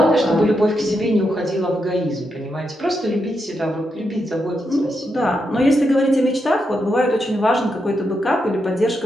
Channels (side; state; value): both; normal; correlation 0.83